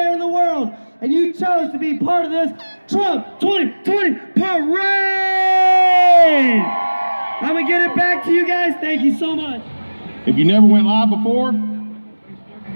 in the world, and you chose to be part of this Trump 2020 parade. I'm gonna get it back to you guys. Thank you so much. If you never went live before,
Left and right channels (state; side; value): inverted; both; correlation -1.00